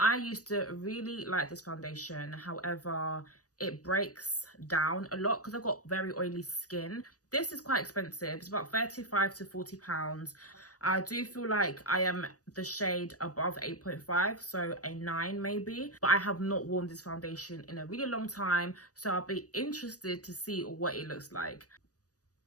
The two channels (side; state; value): right; late; 0.67 ms